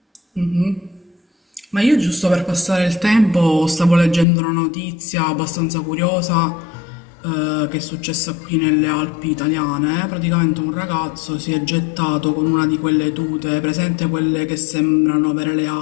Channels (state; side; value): drops out; right; at 4.2 s